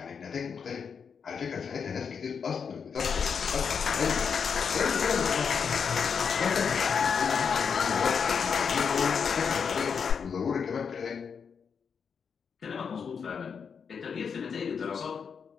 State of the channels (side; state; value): right; quieter; 6.4 dB